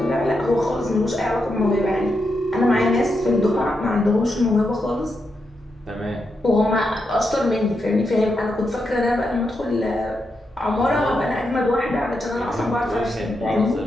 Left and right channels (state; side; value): normal; both; correlation 0.84